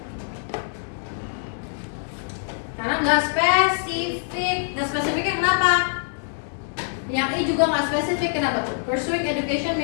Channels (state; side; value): silent; right; digital silence